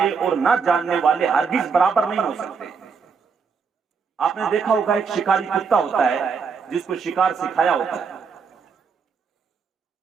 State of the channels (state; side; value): quieter; left; 5.6 dB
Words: اور نہ جاننے والے ہرگز برابر نہیں ہو سکتے۔ آپ نے دیکھا ہوگا ایک شکاری کتا ہوتا ہے جس کو شکار سکھایا ہوتا ہے،